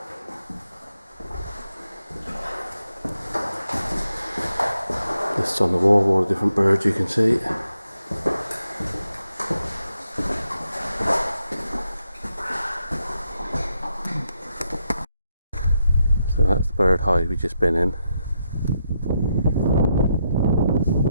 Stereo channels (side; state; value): both; inverted; correlation -0.82